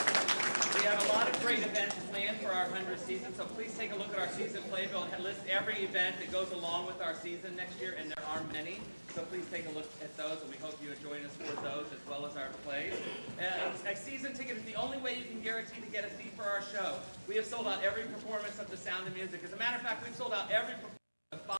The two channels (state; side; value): inverted; both; correlation -1.00